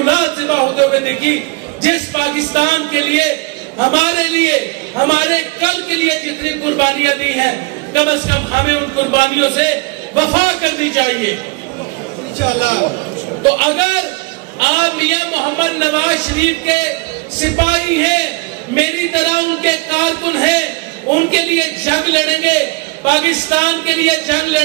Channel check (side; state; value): left; quieter; 26.4 dB